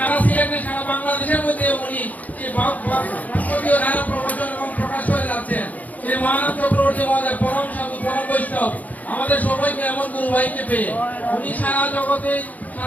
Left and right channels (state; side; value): late; right; 0.077 ms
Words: সিলেটে, সারা বাংলাদেশের মধ্যে উনি যে ভাগবতীয় ধারা প্রবচন এবং প্রকাশ করে যাচ্ছেন, সেই মহানাথ চক্রবর্তী মহোদয় পরম সাধু, পরম বৈষ্ণব, আমাদের সবাইকে এমন গুরু ভাইকে পেয়ে উনি সারা জগতে,